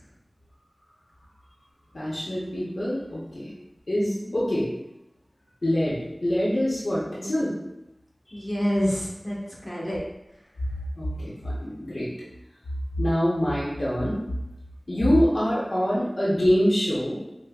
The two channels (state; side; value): normal; both; correlation 0.98